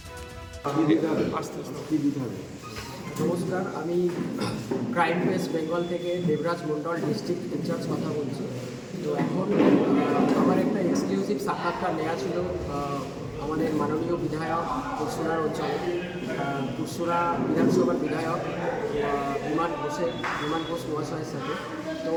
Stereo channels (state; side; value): identical; both; correlation 1.00